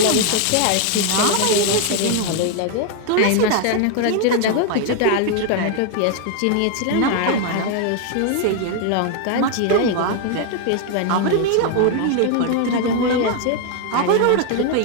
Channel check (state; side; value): different; both; correlation 0.01